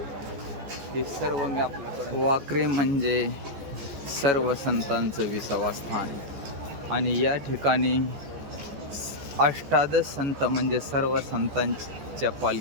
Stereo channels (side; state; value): left; late; 14 ms